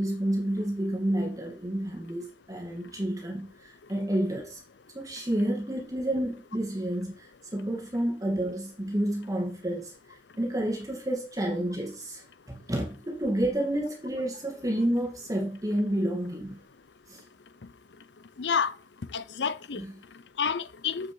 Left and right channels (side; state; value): both; normal; correlation 0.73